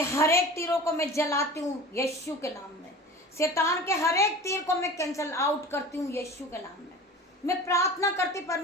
हर एक तीरों को मैं जलाती हूँ यीशु के नाम में। शैतान के हर एक तीर को मैं कैंसिल आउट करती हूँ यीशु के नाम में। मैं प्रार्थना करती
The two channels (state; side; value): normal; both; correlation 0.38